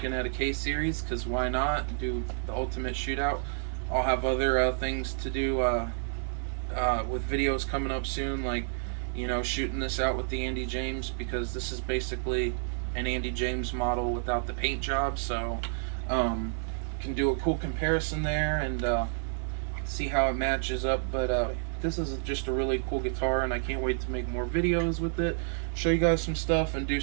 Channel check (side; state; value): left; silent; 55 dB below the other